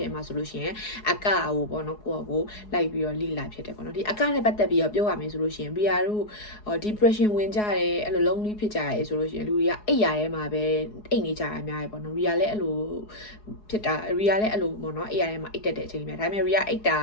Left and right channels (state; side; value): late; right; 4.8 ms